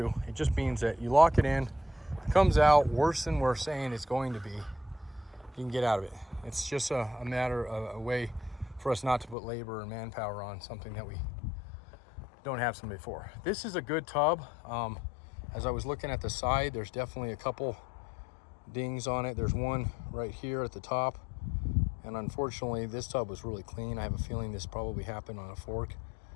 It just means that you lock it in, it comes out worse than we're saying it's going to be, you can get out of it. It's just a matter of a way for us not to put labor and manpower on something that we don't have somebody for. This is a good tub. As I was looking at the side, there's definitely a couple dings on it. There's one right here at the top. And unfortunately, this tub was really clean. I have a feeling this probably happened on a fork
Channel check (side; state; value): right; drops out; at 9.3 s